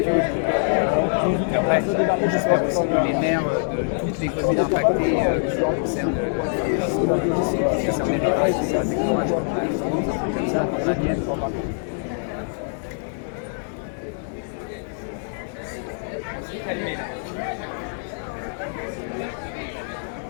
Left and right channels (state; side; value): silent; right; digital silence